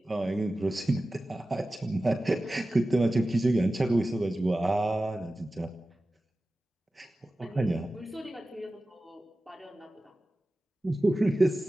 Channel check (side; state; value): both; normal; correlation 0.95